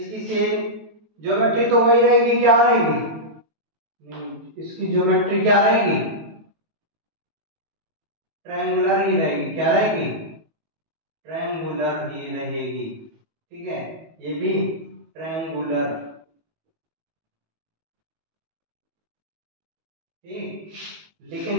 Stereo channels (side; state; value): left; late; 18 ms